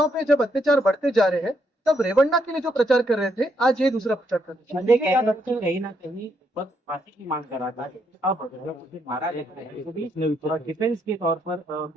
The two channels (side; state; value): both; normal; correlation 0.76